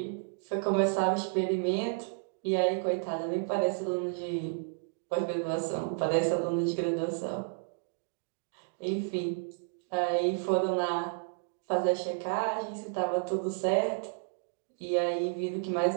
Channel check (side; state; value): left; silent; digital silence